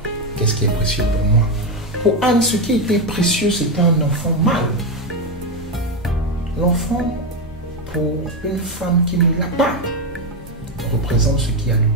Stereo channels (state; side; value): normal; both; correlation 0.08